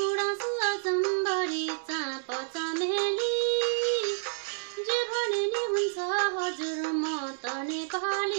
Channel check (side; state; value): left; silent; digital silence